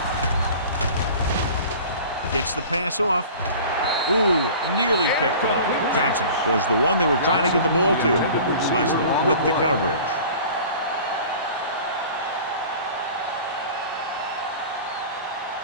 B. Gets the pass off. Ooh, nearly picked off. Johnson was the one they were trying to get the ball to. Leslie with the coverage.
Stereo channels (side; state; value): both; inverted; correlation -0.41